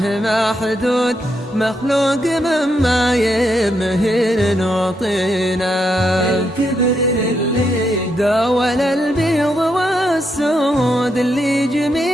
محدود، مخلوق مما يمهن وطينا. الكبر للي داول البيض والسود، اللي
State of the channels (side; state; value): both; normal; correlation 0.80